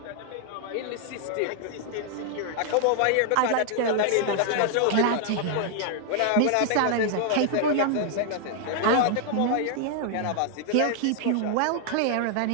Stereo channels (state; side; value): different; both; correlation 0.00